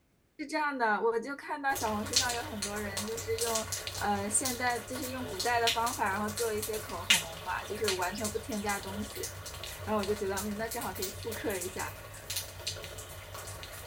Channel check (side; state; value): both; identical; correlation 1.00